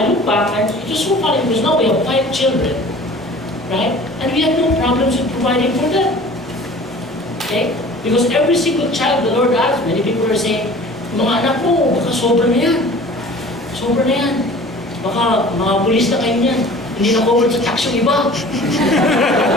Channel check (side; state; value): both; normal; correlation 0.45